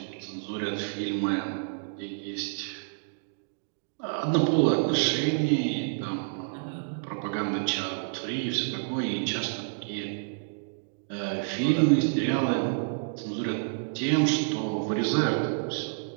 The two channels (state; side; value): silent; left; digital silence